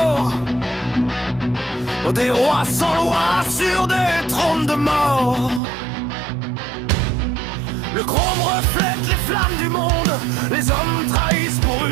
Des rois sans loi sur des trônes de mort. Le chrome reflète les flammes du monde. Les hommes trahissent pour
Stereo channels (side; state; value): left; drops out; at 5.6 s